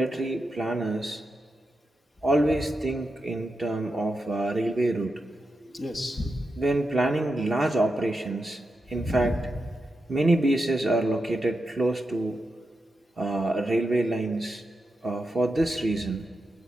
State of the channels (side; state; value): both; normal; correlation 0.87